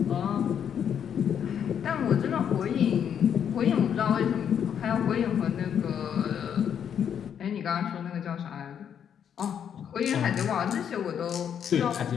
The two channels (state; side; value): quieter; right; 8.5 dB